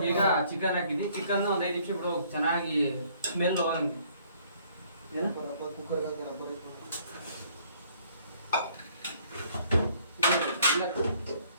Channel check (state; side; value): inverted; both; correlation -0.61